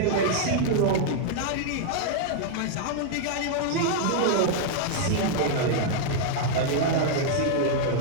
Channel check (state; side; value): different; both; correlation -0.01